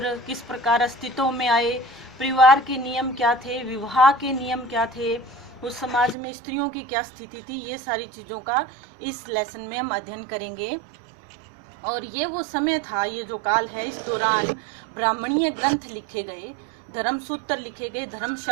किस प्रकार अस्तित्व में आए, परिवार के नियम क्या थे, विवाह के नियम क्या थे, उस समाज में स्त्रियों की क्या स्थिति थी, ये सारी चीज़ों का इस लेसन में हम अध्ययन करेंगे। और ये वो समय था, ये जो काल है, इस दौरान ब्राह्मणीय ग्रंथ लिखे गए, धर्म सूत्र लिखे गए,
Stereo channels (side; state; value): left; drops out; at 6.2 s